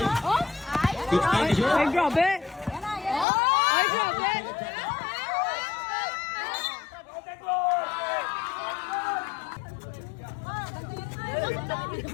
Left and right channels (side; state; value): right; drops out; at 3.2 s